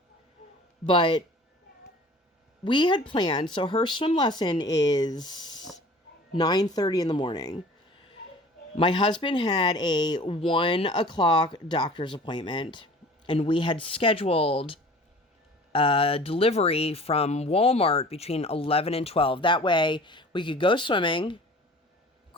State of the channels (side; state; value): both; normal; correlation 0.45